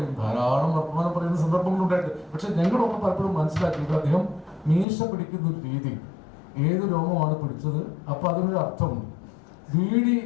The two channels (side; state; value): right; drops out; at 4.9 s